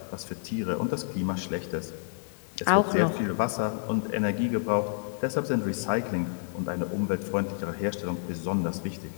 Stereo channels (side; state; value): right; silent; digital silence